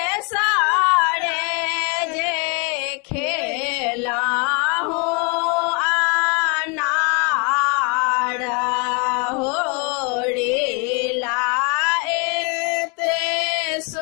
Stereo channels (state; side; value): quieter; right; 32.6 dB